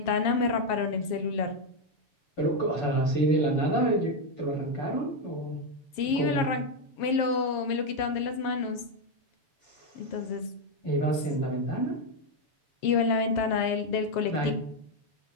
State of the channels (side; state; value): right; late; 7.4 ms